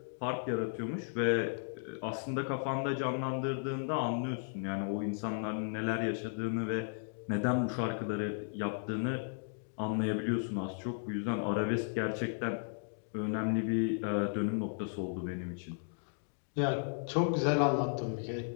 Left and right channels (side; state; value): right; silent; digital silence